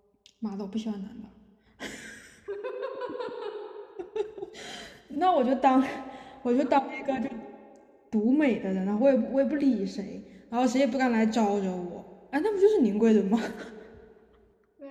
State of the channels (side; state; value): both; identical; correlation 1.00